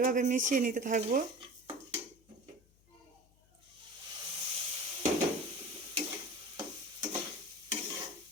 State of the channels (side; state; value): left; noise; hum, 30 dB below the sound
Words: মিশিয়ে নিতে থাকবো।